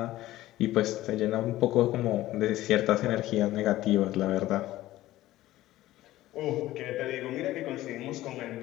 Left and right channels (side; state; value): right; quieter; 15.7 dB